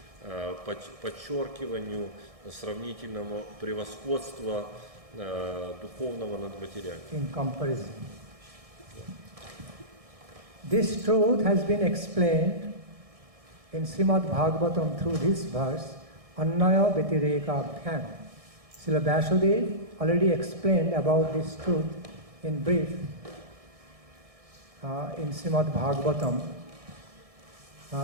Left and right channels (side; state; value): left; late; 1.6 ms